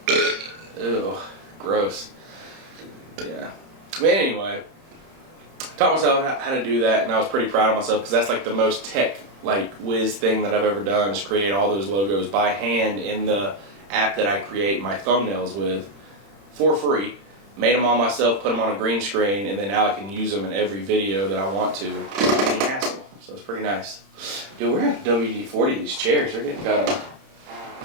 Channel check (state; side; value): late; left; 30 ms